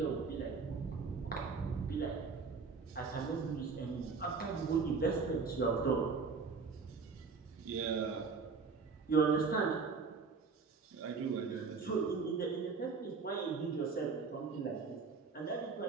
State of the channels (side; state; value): left; quieter; 4.9 dB